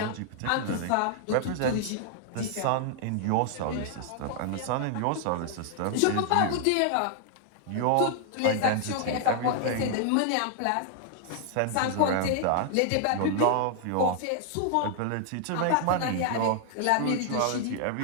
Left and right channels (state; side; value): different; both; correlation 0.00